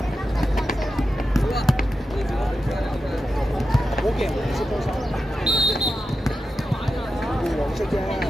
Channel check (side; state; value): both; normal; correlation 0.90